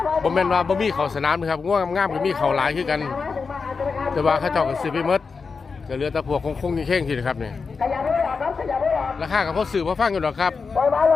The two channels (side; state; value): right; quieter; 4.9 dB